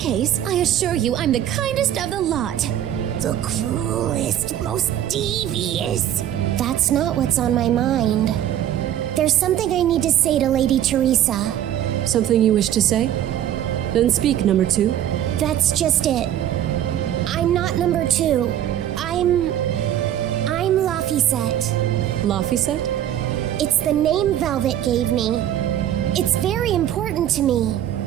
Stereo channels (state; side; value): quieter; left; 11.3 dB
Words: I assure you I'm the kindest of the lot. The cruelest, most devious. That's not what's on my mind. There's something I need to say to Lady Teresa. Something you wish to say? Then speak, number 2. That's just it. I'm not number 2. I'm Laphicet. Laphicet? It's the name Velvet gave me. It's very important to me.